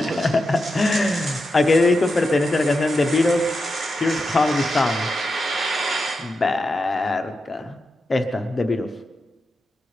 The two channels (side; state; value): both; normal; correlation 0.88